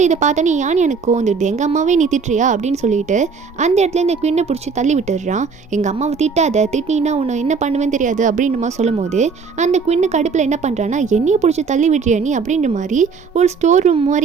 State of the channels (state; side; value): quieter; left; 5.3 dB